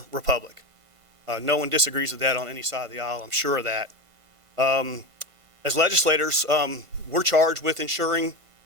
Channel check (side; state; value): left; late; 1.5 ms